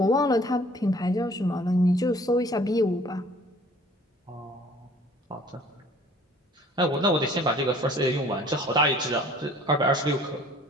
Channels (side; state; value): both; normal; correlation 0.53